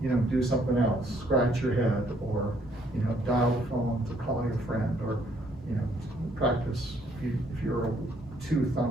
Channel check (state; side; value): normal; both; correlation 0.67